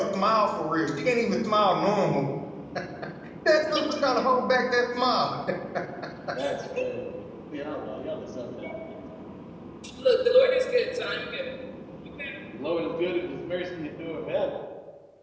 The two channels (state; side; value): identical; both; correlation 1.00